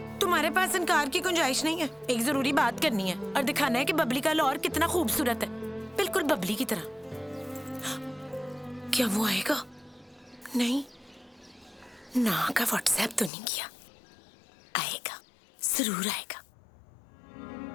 तुम्हारे पास इनकार की गुंजाइश नहीं है। एक जरूरी बात करनी है और दिखाना है कि बबली का लाहौर कितना खूबसूरत है, बिल्कुल बबली की तरह। क्या वो आएगा? नहीं ना का व्हाट्सएप तो नहीं किया। आएगा, जरूर आएगा।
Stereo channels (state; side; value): drops out; right; at 13.3 s